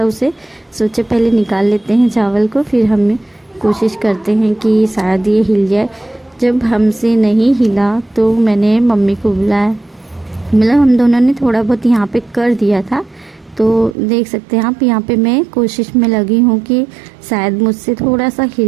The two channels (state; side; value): drops out; left; at 14.0 s